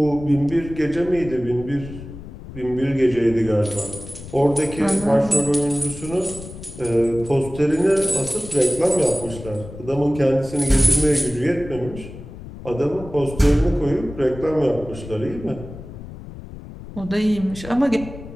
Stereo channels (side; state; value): left; noise; rumble, 13 dB below the sound